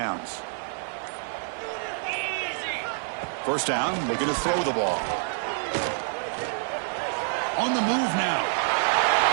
First down, looking to throw the ball. On the move now.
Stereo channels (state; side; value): silent; left; 56 dB below the other